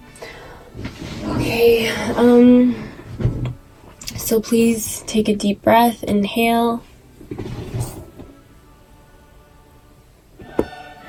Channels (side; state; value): both; identical; correlation 1.00